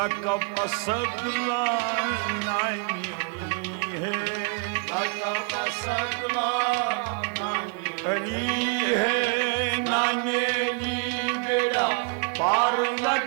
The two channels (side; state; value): left; quieter; 34.6 dB